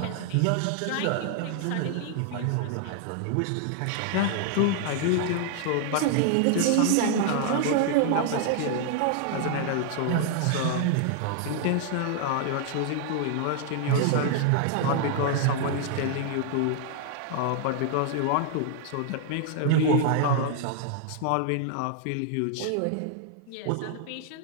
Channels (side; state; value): both; different; correlation 0.00